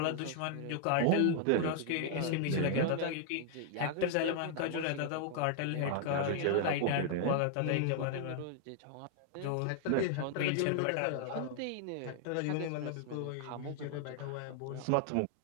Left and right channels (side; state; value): both; different; correlation 0.00